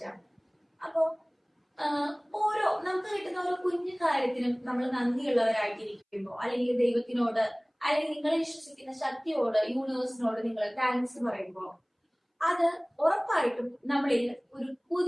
അപ്പോ ഓരോ നമുക്ക് കിട്ടുന്ന ഓരോ കുഞ്ഞു കാര്യത്തിനും നമ്മൾ നന്ദിയുള്ളവരായിട്ടിരിക്കുമ്പോൾ, അല്ലെങ്കിൽ ദൈവത്തിനോട്, അല്ലെങ്കിൽ നിങ്ങളെ വിശ്വസിക്കുന്ന ശക്തിയോട്, യൂണിവേഴ്സിനോട് നിങ്ങൾ താങ്ക്സ് പറയുമ്പോൾ, അത് ഉറപ്പായിട്ടും നമ്മളിൽ ഒരു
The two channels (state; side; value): identical; both; correlation 1.00